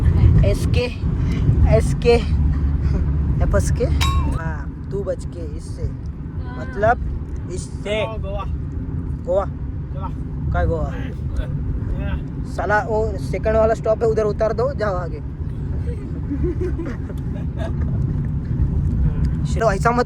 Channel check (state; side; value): identical; both; correlation 1.00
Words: एसके एफएसके, हाँ तू बच के इससे, मतलब इससे गोवा काय गोवा साला वो सेकंड वाला स्टॉप है, उधर उतार दो, जाओ आगे. ऐसा